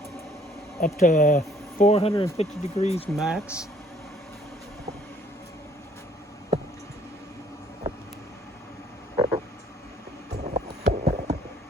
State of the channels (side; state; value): both; normal; correlation 0.60